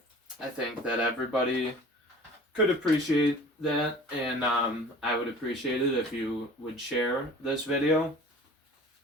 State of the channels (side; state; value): both; normal; correlation 0.44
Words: I think that everybody could appreciate that, and I would appreciate it if you would share this video.